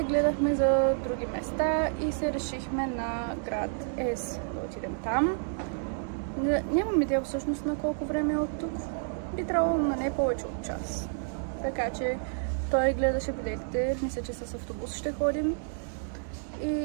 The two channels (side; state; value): left; silent; digital silence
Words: гледахме за други места и се решихме на град Ес да отидем там. Нямам идея всъщност на колко време е от тук. Би трябвало на не повече от час. Така че той гледаше билетите. Мисля, че с автобус ще ходим.